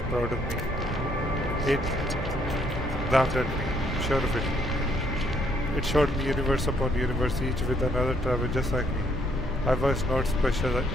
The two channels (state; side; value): normal; both; correlation 0.69